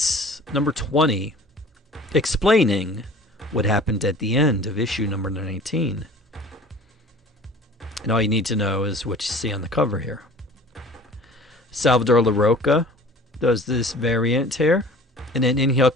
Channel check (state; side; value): normal; both; correlation 0.45